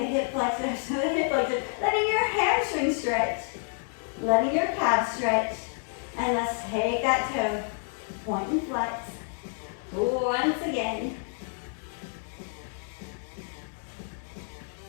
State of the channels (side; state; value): right; silent; 58 dB below the other